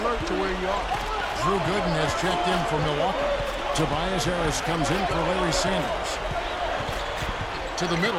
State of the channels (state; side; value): identical; both; correlation 1.00